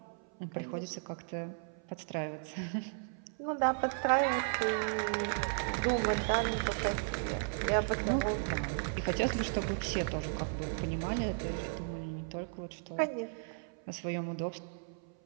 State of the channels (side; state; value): left; silent; 54 dB below the other